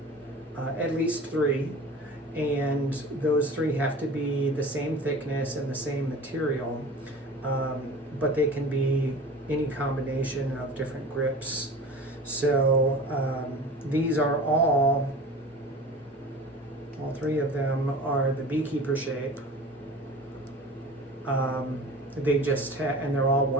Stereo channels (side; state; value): both; normal; correlation 0.39